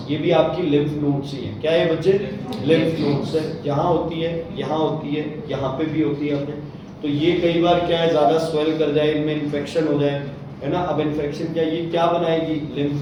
ये भी आपकी लिम्फ नोड्स ही है। क्या है बच्चे, लिम्फ नोड्स है। यहाँ होती है, यहाँ होती है, यहाँ पे भी होती है अपने। तो ये कई बार क्या है, ज्यादा स्वेल कर जाए, इनमें इन्फेक्शन हो जाए, है ना। अब इन्फेक्शन क्या, ये क्या बनाएगी,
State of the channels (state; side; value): identical; both; correlation 1.00